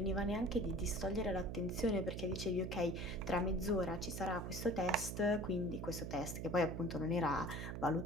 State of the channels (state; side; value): noise; right; hum, 5 dB below the sound